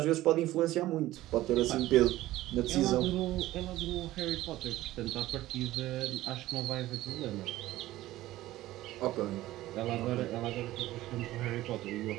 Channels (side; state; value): left; quieter; 15.9 dB